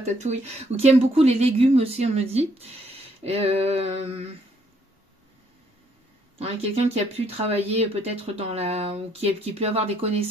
ou qui aime beaucoup les légumes aussi, on me dit. Quelqu'un qui a pu travailler peut-être dans la... ou qui peut avoir des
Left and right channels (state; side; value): normal; both; correlation 0.69